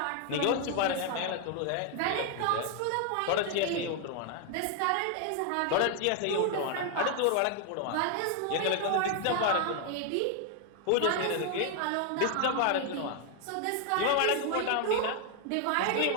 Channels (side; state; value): both; different; correlation 0.00